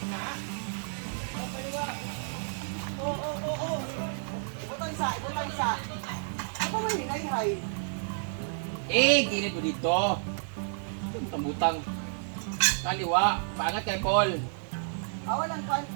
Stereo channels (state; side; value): silent; left; digital silence